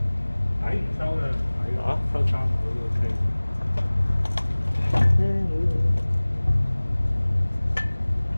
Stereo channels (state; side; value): inverted; both; correlation -1.00